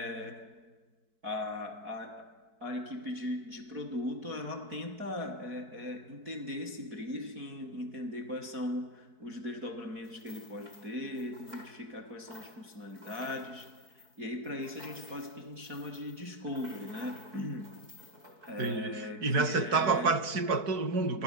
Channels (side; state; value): left; late; 4.6 ms